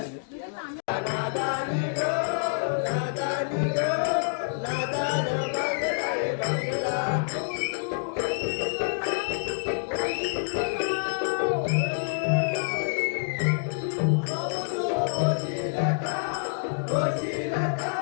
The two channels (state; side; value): silent; right; digital silence